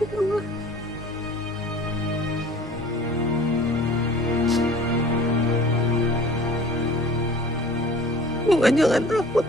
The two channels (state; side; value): normal; both; correlation 0.46